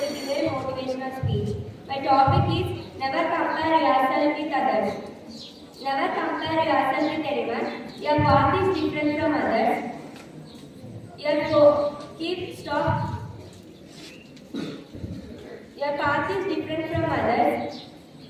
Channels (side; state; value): both; identical; correlation 1.00